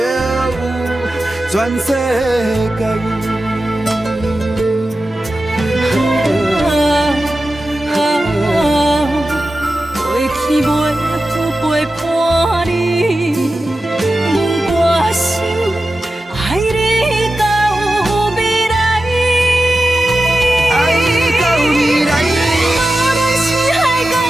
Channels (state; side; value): normal; both; correlation 0.93